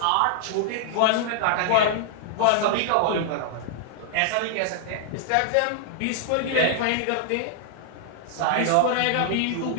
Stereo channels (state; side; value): different; both; correlation -0.01